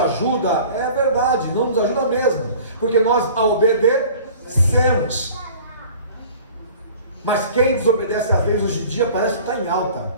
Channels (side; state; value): both; inverted; correlation -0.45